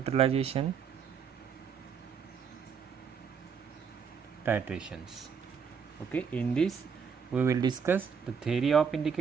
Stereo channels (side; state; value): left; quieter; 6.6 dB